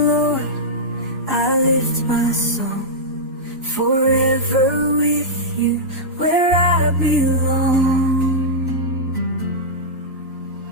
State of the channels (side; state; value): both; normal; correlation -0.09